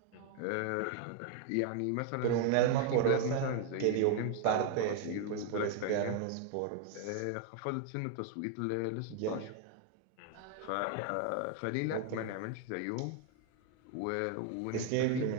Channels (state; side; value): different; both; correlation 0.00